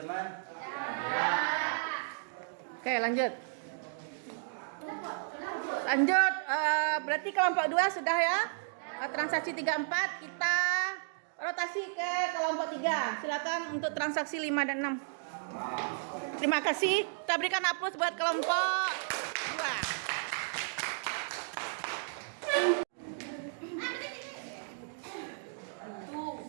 Oke, lanjut. Lanjut, berarti kelompok 2 sudah ya. Transaksi 3, 4 kita rotasi ke kelompok 3. Silakan untuk transaksi 5 dan 6. Terima kasih. Kita berikan aplaus buat kelompok 2.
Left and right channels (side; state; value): left; silent; digital silence